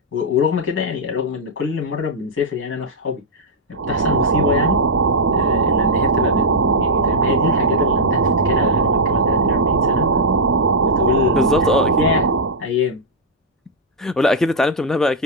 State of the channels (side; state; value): both; normal; correlation -0.06